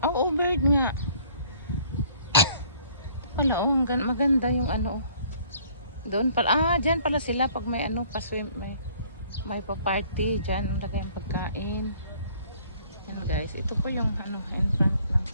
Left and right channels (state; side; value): inverted; both; correlation -0.58